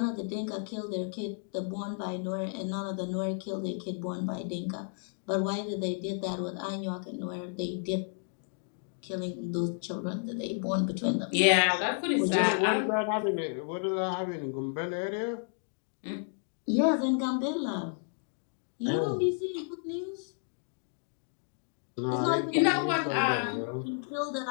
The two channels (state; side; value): silent; right; 57 dB below the other